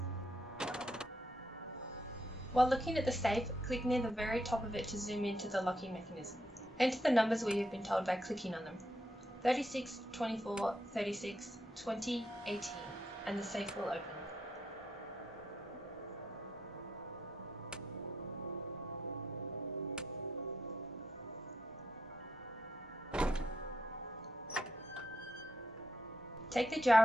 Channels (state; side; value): normal; both; correlation 0.80